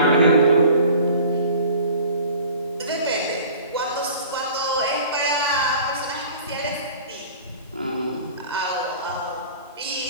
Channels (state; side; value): inverted; both; correlation -0.44